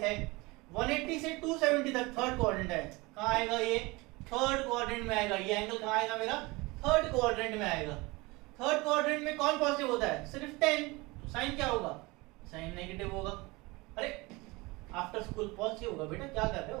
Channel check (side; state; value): left; quieter; 23.7 dB